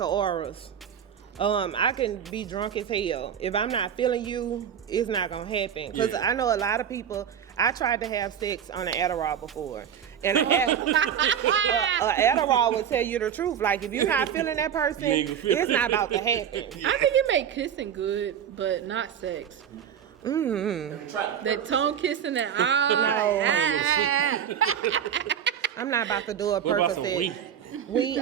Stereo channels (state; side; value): quieter; left; 8.8 dB